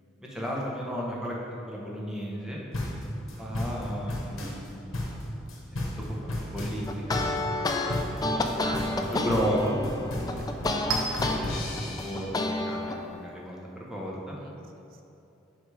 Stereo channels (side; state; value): both; normal; correlation 0.59